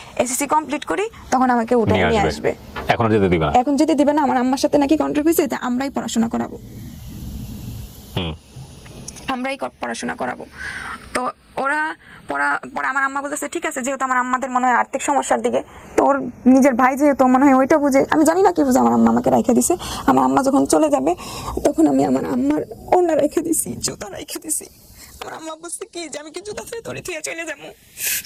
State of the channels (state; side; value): identical; both; correlation 1.00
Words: এসএসসি কমপ্লিট করি তখন আমাকে উঠে নিয়ে আসবে। এখন যেতে দিবে না, আমার আম্মার সাথে নাকি কন্ট্রাক্ট হয়েছে যে আমরাই পড়াশোনা করাবো। তো ওরা পরে আমার আম্মা বলতেছে ঠিক আছে, যেহেতু আমার আম্মাদের মনে হয় আর্থিক সমস্যার দিকে, তো ওর নিজের ভাই যেহেতু মনে হয় ওইটা বুঝে, আমি জানি না কি বুঝে আমার আম্মা আমাকে রেখে দিছে। আমার আম্মা যখন চলে যাবে তখন আমি আমার আম্মার ওড়না রেখে দিছি, জুতা রেখে দিছি। আমার আম্মা বলছে কি যে আমি কি জুতা ফেলে তোরে থুয়ে চলে যাবো?